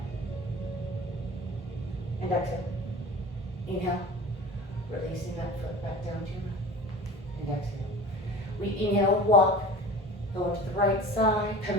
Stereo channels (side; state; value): both; normal; correlation 0.37